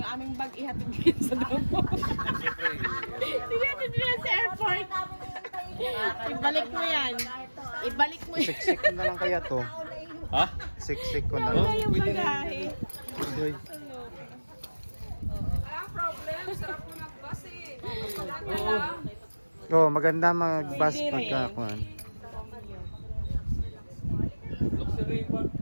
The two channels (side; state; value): both; inverted; correlation -1.00